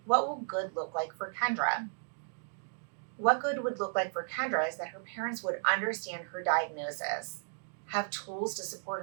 what will good look like for Kendra. What good would look like for Kendra is that her parents would understand her diagnosis. have tools to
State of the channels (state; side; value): silent; left; digital silence